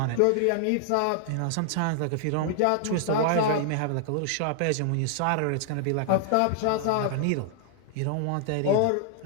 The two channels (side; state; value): both; different; correlation 0.00